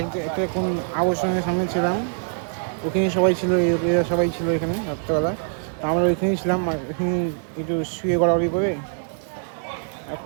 একটা কোন আবর্জনের সামনে ছিলাম, ওখানে সবাই ছিল, এরা সবাই ছিল এখানে রাত্রেবেলা। তো আমরা ওইখানেই ছিলাম, এখানে একটু শুয়ে গড়াগড়ি করে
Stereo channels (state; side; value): silent; left; digital silence